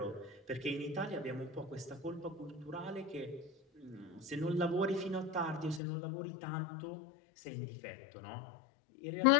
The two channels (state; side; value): drops out; right; at 5.8 s